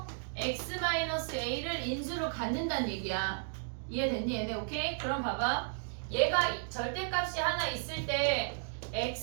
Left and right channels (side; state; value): left; silent; digital silence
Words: x-a를 인수로 갖는다는 얘기야. 이해됐니 얘네? 오케이? 그럼 봐봐. 얘가 절대값이 하나 있을 때